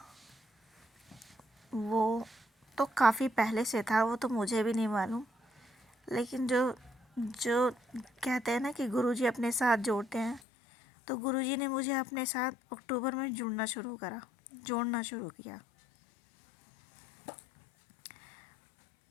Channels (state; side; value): drops out; right; at 10.4 s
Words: वो तो काफ़ी पहले से था, वो तो मुझे भी नहीं मालूम। लेकिन जो जो कहते हैं ना कि गुरुजी अपने साथ जोड़ते हैं, तो गुरुजी ने मुझे अपने साथ अक्टूबर में जोड़ना शुरू किया।